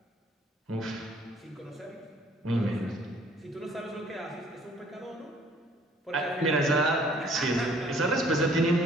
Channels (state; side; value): normal; both; correlation 0.58